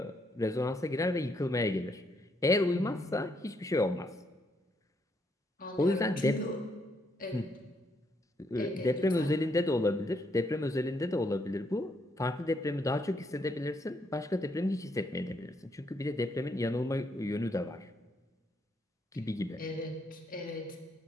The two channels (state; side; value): normal; both; correlation 0.74